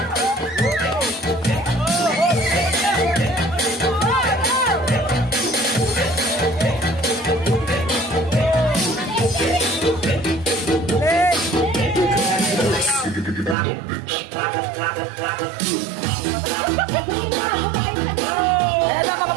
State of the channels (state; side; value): drops out; left; at 13.6 s